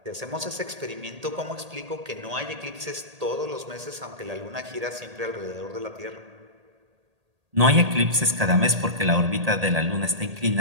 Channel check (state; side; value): late; left; 1.8 ms